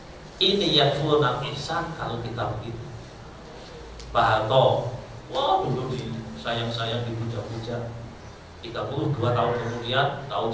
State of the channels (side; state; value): both; identical; correlation 1.00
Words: Ini yakfurunal ihsan kalau kita begitu. Pak Harto, wah dulu sayang-sayang dipuja-puja. 32 tahun kemudian, tahun